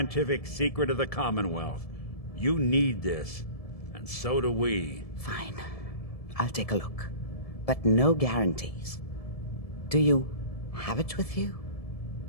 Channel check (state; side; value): late; right; 1.7 ms